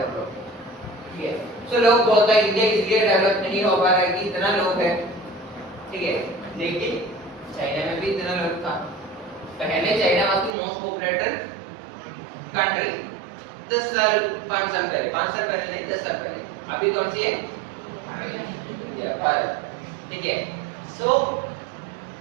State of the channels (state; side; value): drops out; left; at 10.6 s